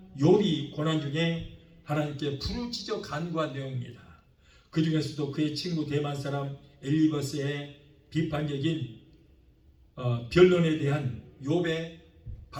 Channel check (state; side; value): identical; both; correlation 1.00